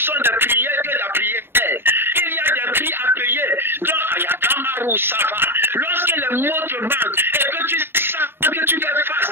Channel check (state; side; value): late; left; 0.11 ms